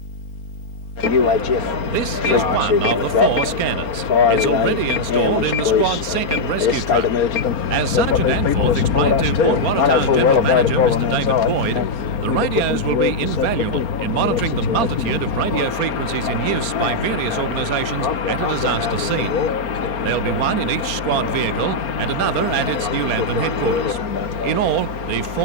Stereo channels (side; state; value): right; late; 4.3 ms